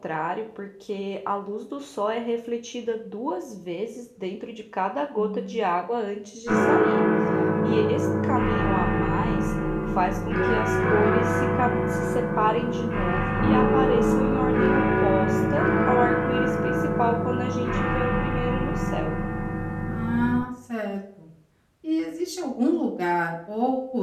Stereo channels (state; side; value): identical; both; correlation 1.00